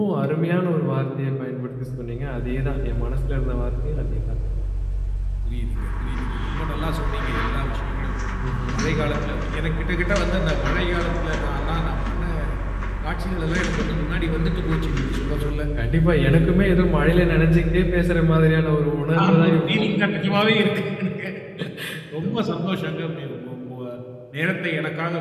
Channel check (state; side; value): identical; both; correlation 1.00